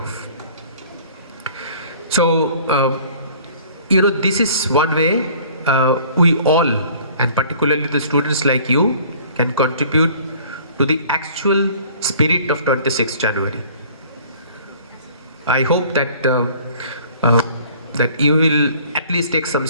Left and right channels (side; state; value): both; inverted; correlation -0.52